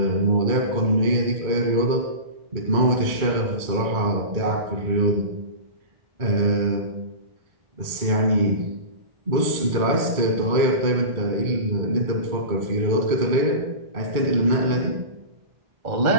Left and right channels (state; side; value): late; left; 2.2 ms